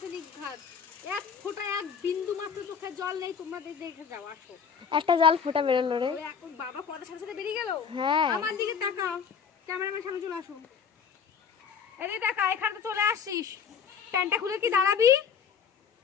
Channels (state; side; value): quieter; right; 6.8 dB